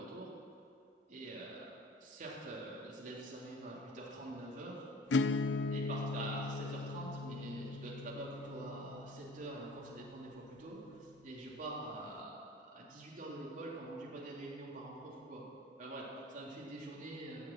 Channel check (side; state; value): both; normal; correlation 0.45